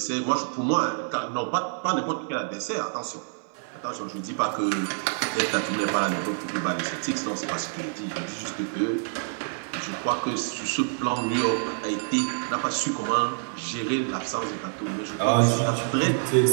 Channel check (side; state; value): left; silent; 56 dB below the other